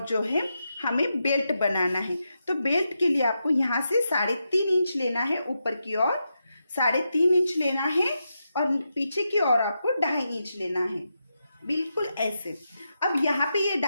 जो है हमें बेल्ट बनाना है। तो बेल्ट के लिए आपको यहाँ से 3.5 इंच लेना है, ऊपर की ओर 3.5 इंच लेना है और पीछे की ओर आपको 2.5 इंच लेना है बिल्कुल ऐसे। अब यहाँ पे ये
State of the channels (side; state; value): both; inverted; correlation -0.86